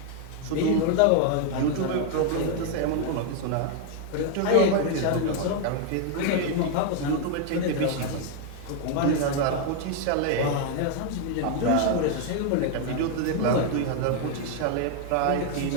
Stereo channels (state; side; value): different; both; correlation 0.00